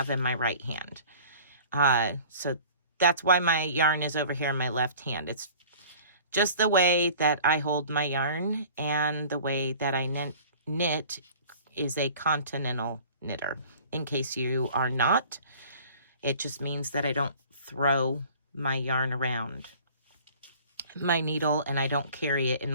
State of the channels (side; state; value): both; inverted; correlation -0.46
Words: in my right hand. So that's why my yarn is over here in my left hand. It's just the way that I hold my yarn, and the way that I knit is a continental knitter. In case you are not, it just means that I don't throw my yarn around my needle, and I don't carry it in